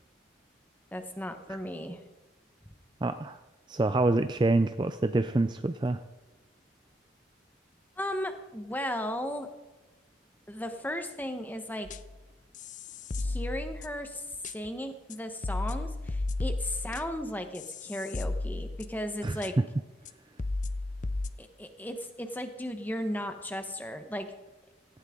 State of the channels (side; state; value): both; normal; correlation 0.80